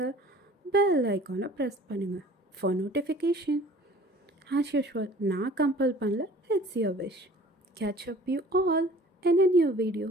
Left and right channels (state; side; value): normal; both; correlation 0.49